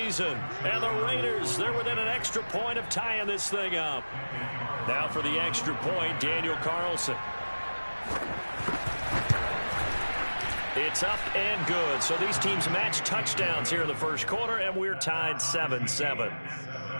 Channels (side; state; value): both; inverted; correlation -1.00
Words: And the Raiders, they're within an extra point of tying this thing up. Now for the extra point, Daniel Carlson. It's up and good. So these teams match touchdowns here in the first quarter, and we're tied 7-7.